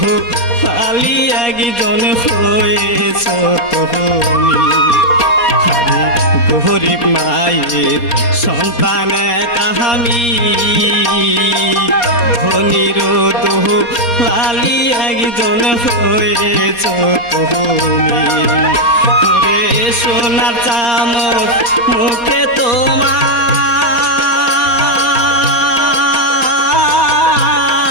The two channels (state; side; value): late; right; 4.2 ms